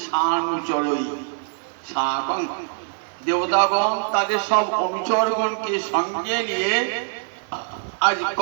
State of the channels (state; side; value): silent; left; digital silence